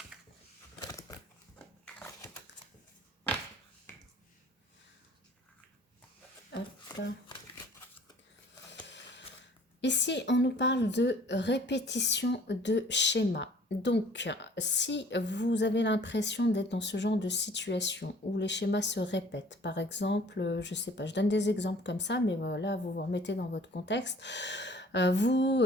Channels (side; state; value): both; normal; correlation 0.53